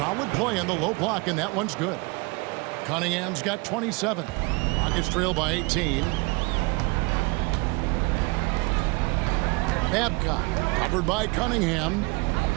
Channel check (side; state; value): left; quieter; 27.6 dB